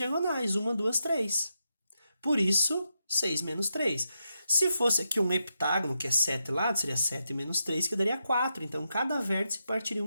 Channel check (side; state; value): both; inverted; correlation -0.86